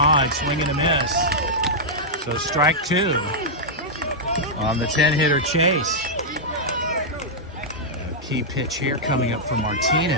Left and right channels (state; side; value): normal; both; correlation -0.08